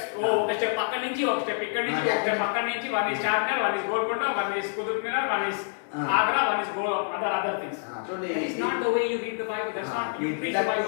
Oh, ఒక స్టెప్ పక్క నుంచి ఒక స్టెప్ ఇక్కడ నుంచి ఒక స్టెప్ పక్క నుంచి, one is Charminar, one is Golconda, one is Qutub Minar, one is Agra, one is other things. చూడండి, That is not the way you read the Bible. That's not you preach the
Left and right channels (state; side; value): silent; right; 60 dB below the other